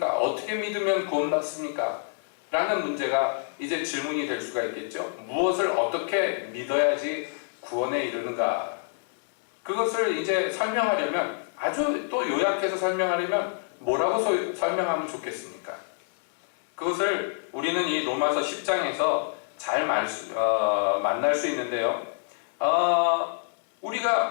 어떻게 믿으면 구원받습니까? 라는 문제가 이제 질문이 될 수가 있겠죠. 무엇을 어떻게 믿어야지 구원에 이르는가? 그것을 이제 설명하려면, 아주 또 요약해서 설명하려면 뭐라고 설명하면 좋겠습니까? 그것을 우리는 이 로마서 10장에서 잘 만날 수 있는데요.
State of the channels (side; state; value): right; silent; digital silence